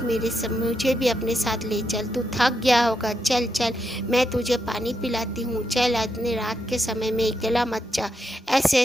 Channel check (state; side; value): normal; both; correlation 0.82